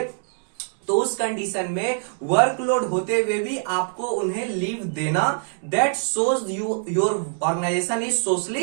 तो उस कंडीशन में वर्कलोड होते हुए भी आपको उन्हें लीव देना, that shows your organisation is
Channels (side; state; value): left; silent; 63 dB below the other